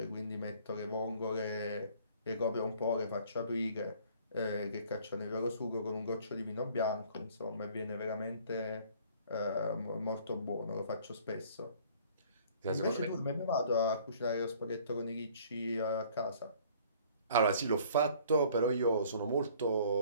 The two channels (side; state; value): both; inverted; correlation -0.55